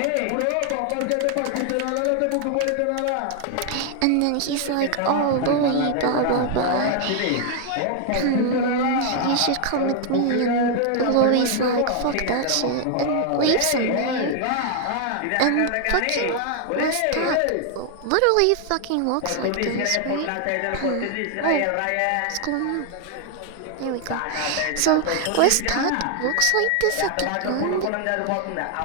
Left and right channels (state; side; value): different; both; correlation 0.00